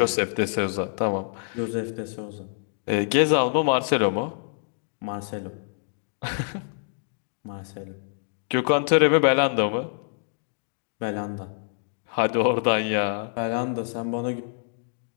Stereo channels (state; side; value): silent; right; digital silence